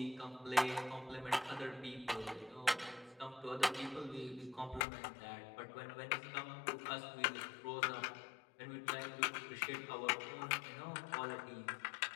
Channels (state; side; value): drops out; right; at 4.9 s